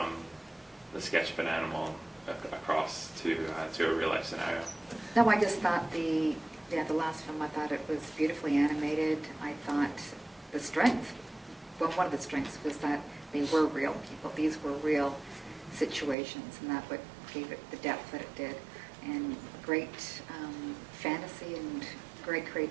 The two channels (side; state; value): left; drops out; at 16.2 s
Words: the sketch of an animal across to a real life scenario. No, I just thought the last film, I thought it was beautifully animated. I thought the strength, one of the strengths was that they were real people. These were real situations, and that what gave it the depth that it did. And great fantasy and great